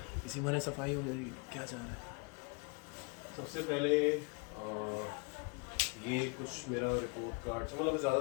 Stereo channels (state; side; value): quieter; right; 33.6 dB